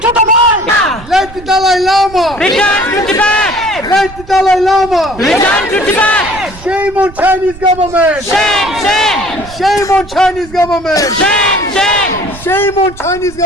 to the world. Let the Dalai Lama. Return to Tibet. Let the Dalai Lama. Return to Tibet. Shame on Chinese government. Shame. Shame on Chinese government. Shame. Shame on Chinese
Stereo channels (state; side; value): noise; right; rumble, 17 dB below the sound